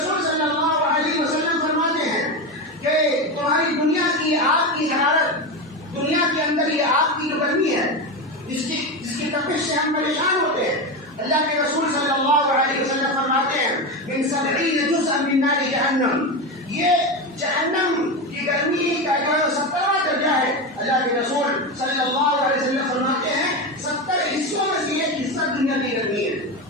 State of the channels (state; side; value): normal; both; correlation 0.17